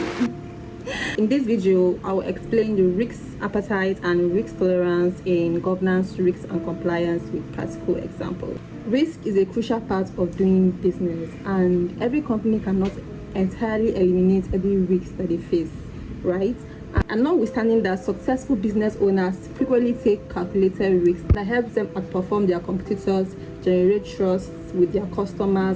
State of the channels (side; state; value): both; identical; correlation 1.00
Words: me. In this video, I will explain the risk appetite and risk tolerance in governance, risk and compliance with practical examples. Risk is a crucial part of doing business, and every company cannot entirely eliminate every risk that they face, right? And notwithstanding that, successful business owners frequently take calculated risks that help them outperform their competitors, generate trust with their